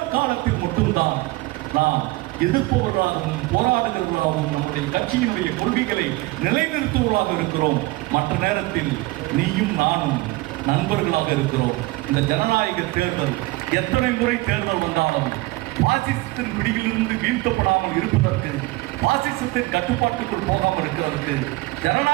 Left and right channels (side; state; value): left; quieter; 21.2 dB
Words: காலத்தில் மட்டும்தான் நாம் எதிர்ப்பவர்களாகவும் போராடுகிறவர்களாகவும் நம்முடைய கட்சியினுடைய கொள்கைகளை நிலைநிறுத்துவதாக இருக்கிறோம். மற்ற நேரத்தில் நீயும் நானும் நண்பர்களாக இருக்கிறோம். இந்த ஜனநாயக தேர்தல் எத்தனை முறை தேர்தல் வந்தாலும் பாசிசத்தின் பிடியிலிருந்து வீழ்த்தப்படாமல் இருப்பதற்கு, பாசிசத்தின் கட்டுப்பாட்டுக்குள் போகாமல் இருக்கிறதற்கு